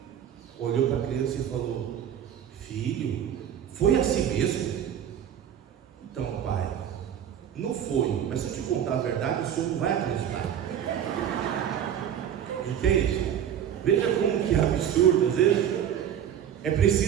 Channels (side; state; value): left; quieter; 9.5 dB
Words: olhou para a criança e falou: filho, foi assim mesmo? Então, pai, não foi, mas se eu te contar a verdade, o senhor não vai acreditar. Entende? Veja como que é absurdo. Às vezes é